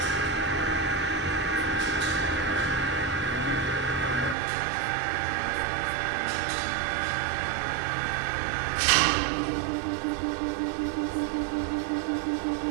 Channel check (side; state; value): left; drops out; at 4.4 s